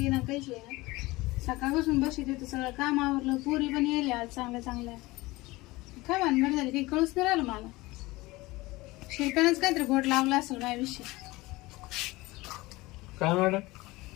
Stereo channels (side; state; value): right; quieter; 20.8 dB